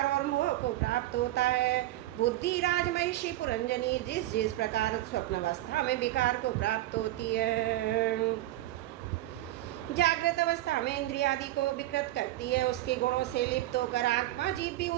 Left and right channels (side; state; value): left; quieter; 15.7 dB